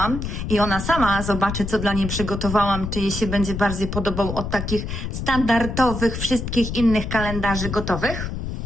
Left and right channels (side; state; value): left; noise; rumble, 5 dB below the sound